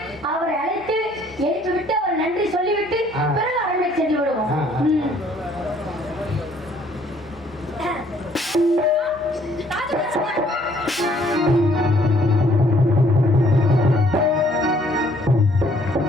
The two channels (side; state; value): both; normal; correlation 0.62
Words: அவரை அழைத்து எழுப்பி விட்டு அவர் நன்றி சொல்லிவிட்டு பிறகு அரண்மனை சென்று விடுவோம்.